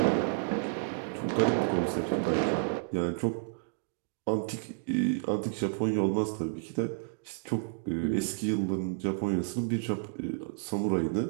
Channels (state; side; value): silent; left; digital silence